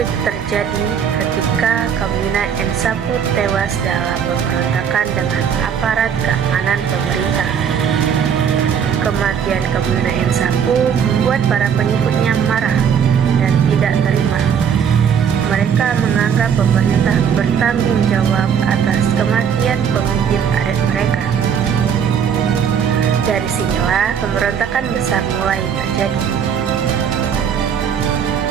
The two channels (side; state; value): left; quieter; 7.6 dB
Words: terjadi ketika Kamina Nsapu tewas dalam pemberontakan dengan aparat keamanan pemerintah. Kematian Kamina Nsapu membuat para pengikutnya marah dan tidak terima. Mereka menganggap pemerintah bertanggung jawab atas kematian pemimpin adat mereka. Dari sinilah pemberontakan besar mulai terjadi.